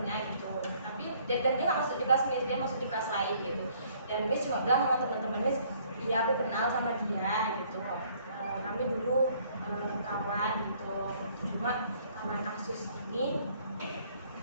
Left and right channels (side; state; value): both; inverted; correlation -0.62